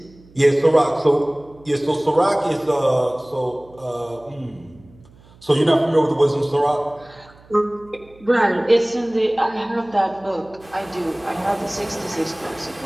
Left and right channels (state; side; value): noise; right; hum, 26 dB below the sound